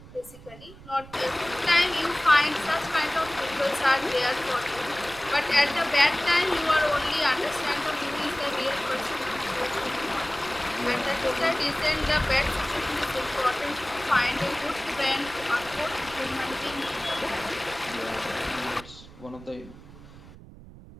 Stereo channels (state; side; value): noise; right; rumble, 18 dB below the sound